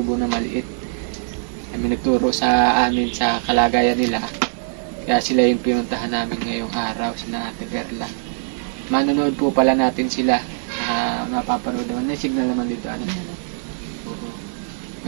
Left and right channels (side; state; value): left; silent; digital silence